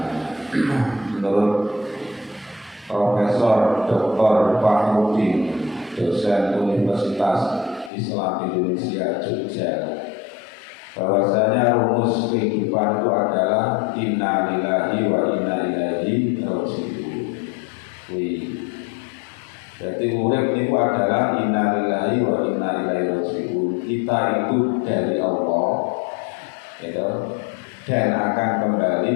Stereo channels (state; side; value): drops out; right; at 7.9 s